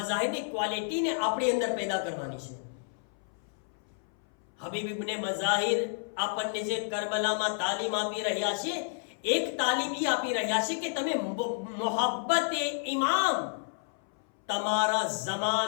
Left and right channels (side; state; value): right; silent; 57 dB below the other